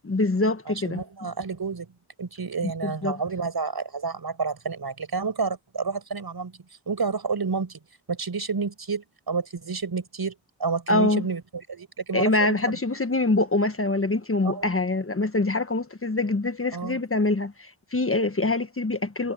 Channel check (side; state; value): both; normal; correlation 0.04